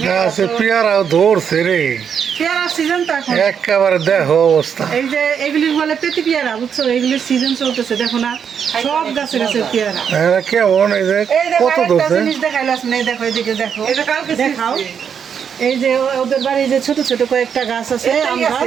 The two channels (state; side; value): quieter; left; 7.5 dB